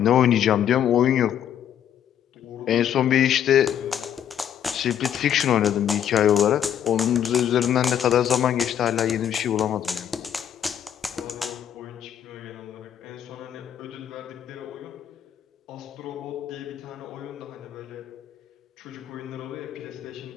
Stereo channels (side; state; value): right; quieter; 9.7 dB